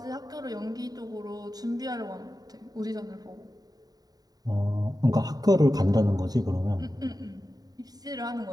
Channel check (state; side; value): late; left; 0.18 ms